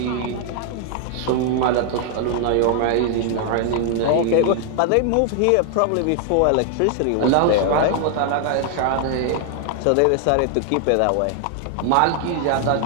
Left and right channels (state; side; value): different; both; correlation 0.00